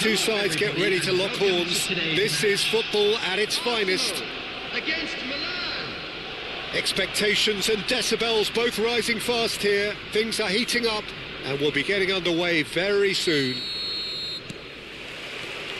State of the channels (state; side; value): identical; both; correlation 1.00